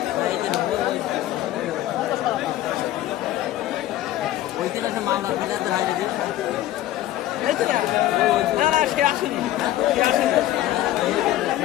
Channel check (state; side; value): quieter; right; 14.2 dB